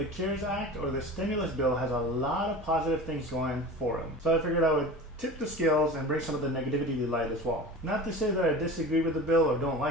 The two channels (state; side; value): normal; both; correlation 0.34